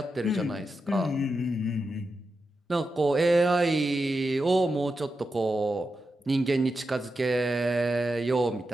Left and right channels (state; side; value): normal; both; correlation 0.89